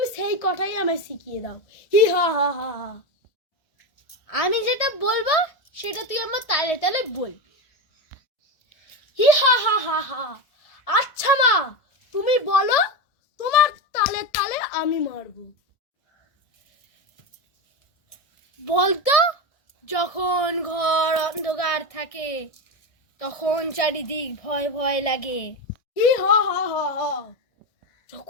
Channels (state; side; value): late; right; 1.6 ms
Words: সেই কটাই আমায় শিখিয়ে দাও। হি হা হা হা হা। আমি যেটা বলবো সেটা তুই আমার তালে তালে বল। হি হা হা হা হা। আচ্ছা মা, তুমি বলো, তোমার তালে তালে আমি মারবো। বলতো, যখন ঘর অন্ধকার থাকে তখন চারিদিক ভয় ভয় লাগে। হি হা হা হা হা।